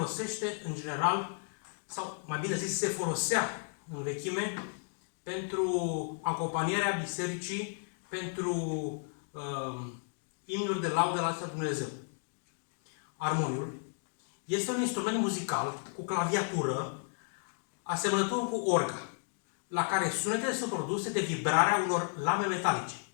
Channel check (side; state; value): right; silent; 55 dB below the other